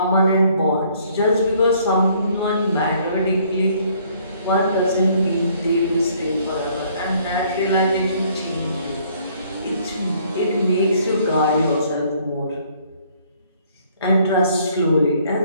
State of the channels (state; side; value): inverted; both; correlation -0.62